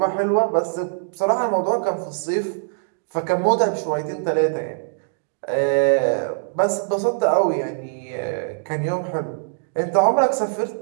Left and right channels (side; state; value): left; silent; digital silence